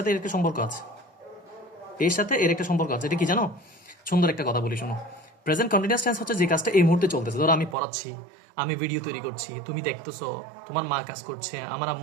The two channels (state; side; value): drops out; left; at 7.8 s